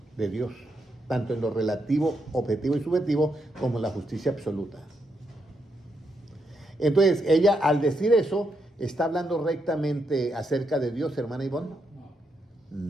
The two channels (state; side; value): normal; both; correlation 0.80